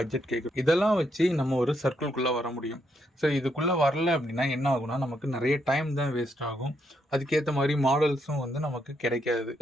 கேட்குறோம். இதெல்லாம் வச்சு நம்ம ஒரு சர்க்கிள்குள்ளே வர முடியும். ஸோ இதுக்குள்ளே வரல அப்படின்னா என்ன ஆகும்னா, நமக்கு நிறைய டைம் தான் வேஸ்ட் ஆகும். அதுக்கேற்ற மாதிரி மாடல்ஸும் வந்து நமக்கு கிடைக்காது.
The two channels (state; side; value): normal; both; correlation 0.77